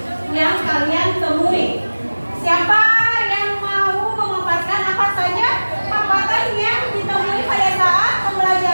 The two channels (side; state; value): both; inverted; correlation -1.00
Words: yang kalian temui. Siapa yang mau memaparkan apa saja hambatan yang ditemui pada saat